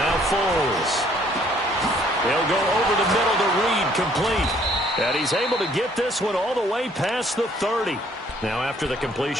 Foles. He'll go over the middle to Reed, complete. And he's able to get this one all the way past the 30. Now after the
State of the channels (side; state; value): both; normal; correlation 0.62